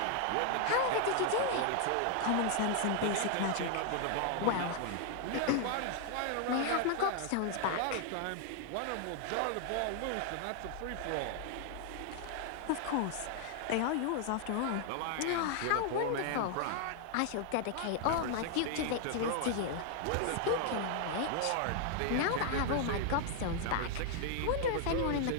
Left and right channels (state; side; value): different; both; correlation 0.00